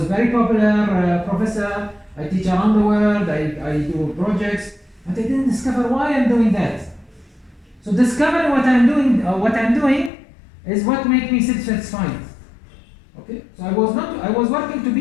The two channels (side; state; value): right; drops out; at 10.1 s